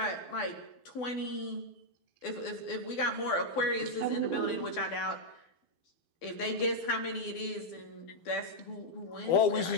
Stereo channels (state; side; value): late; right; 12 ms